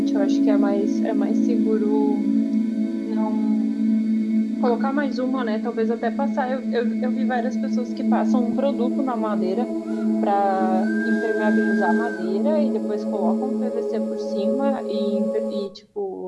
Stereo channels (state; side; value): identical; both; correlation 1.00